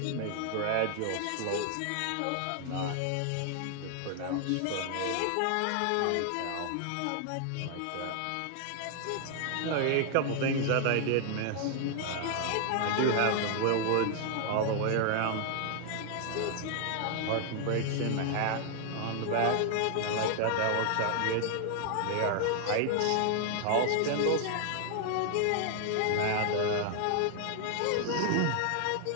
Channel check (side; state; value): both; different; correlation 0.00